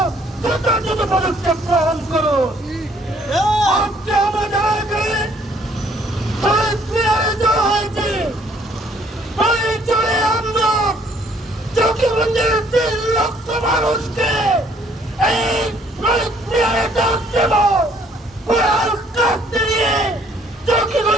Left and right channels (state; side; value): normal; both; correlation 0.63